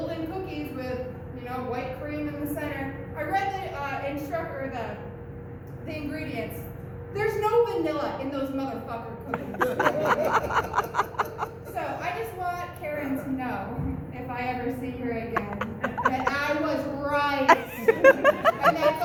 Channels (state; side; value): identical; both; correlation 1.00